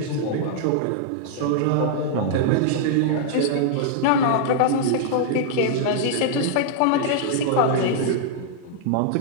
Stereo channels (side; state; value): both; different; correlation -0.01